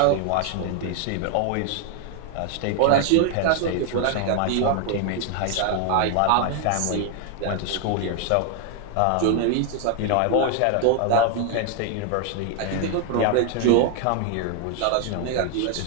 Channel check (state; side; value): different; both; correlation 0.00